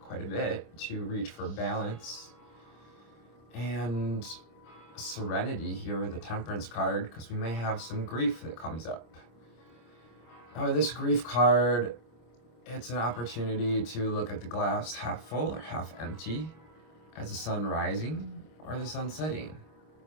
a bit to reach for balance and serenity here with the Temperance card, because we may have some grief that comes up. Now with this grief card, it's an opportunity to look at the glass half full or half empty, as the sun rising or the sun setting.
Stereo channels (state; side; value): late; right; 26 ms